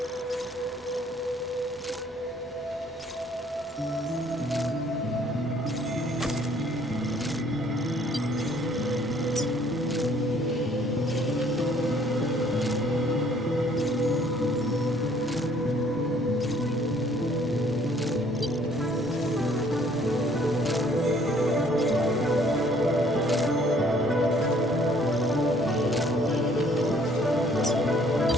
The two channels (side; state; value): both; normal; correlation 0.60